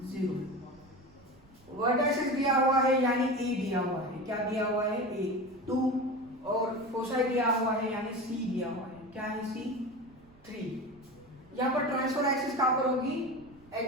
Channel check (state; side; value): noise; right; rumble, 28 dB below the sound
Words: 0। वर्टासेस दिया हुआ है यानी a दिया हुआ है, क्या दिया हुआ है, a 2, और फोसाई दिया हुआ है यानी c दिया हुआ है, क्या है c 3। यहाँ पर ट्रांसफर एक्सिस कहाँ पर होगी,